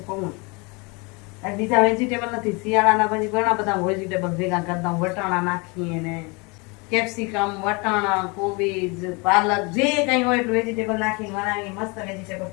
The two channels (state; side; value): quieter; right; 28.8 dB